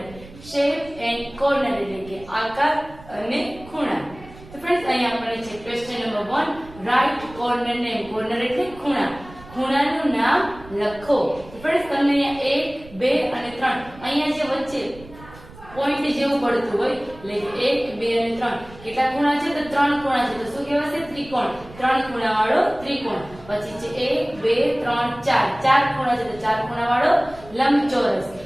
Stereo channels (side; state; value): right; noise; rumble, 20 dB below the sound